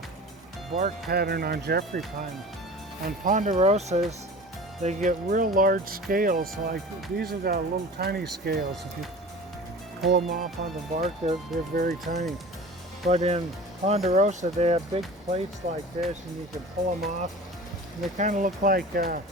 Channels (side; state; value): both; normal; correlation 0.38